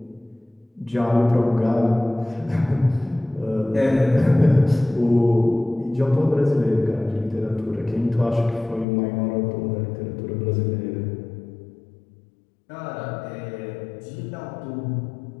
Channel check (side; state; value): right; drops out; at 8.8 s